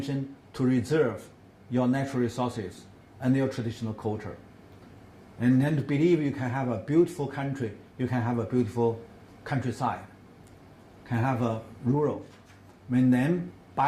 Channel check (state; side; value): identical; both; correlation 1.00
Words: to reserve your natural resources and your traditional culture. And then to believe you can have a beautiful country, you can have a beautiful countryside, can have a rural. And then